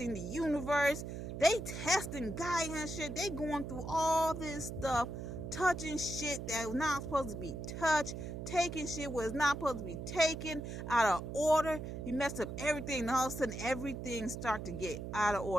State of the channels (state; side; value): noise; right; hum, 6 dB below the sound